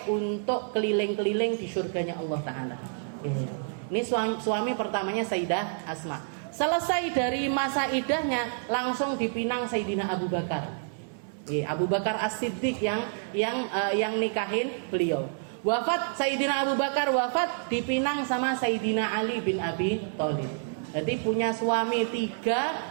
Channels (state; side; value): silent; left; 59 dB below the other